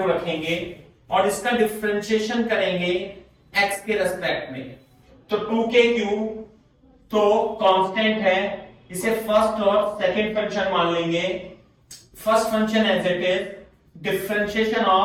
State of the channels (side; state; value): both; identical; correlation 1.00